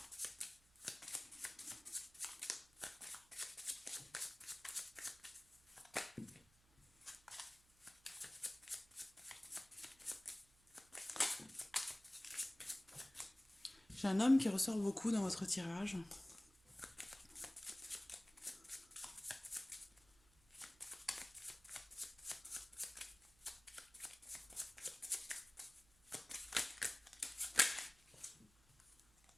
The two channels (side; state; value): right; noise; hum, 29 dB below the sound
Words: j'ai un homme qui ressort beaucoup dans votre tirage.